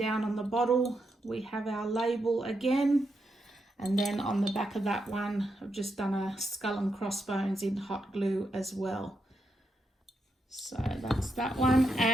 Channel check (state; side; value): normal; both; correlation 0.83